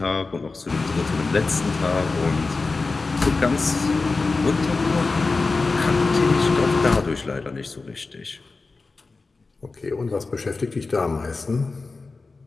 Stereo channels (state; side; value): quieter; right; 3.9 dB